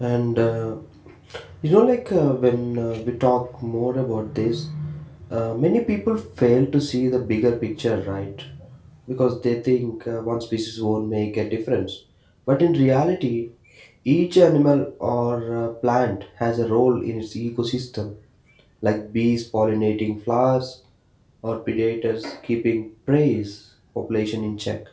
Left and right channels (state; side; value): identical; both; correlation 1.00